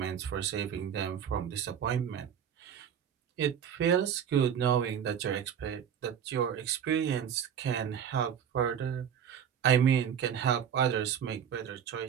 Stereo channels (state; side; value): quieter; left; 8.5 dB